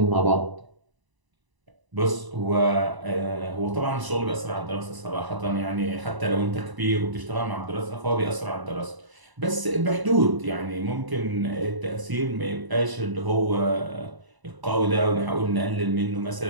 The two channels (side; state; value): left; late; 1.0 ms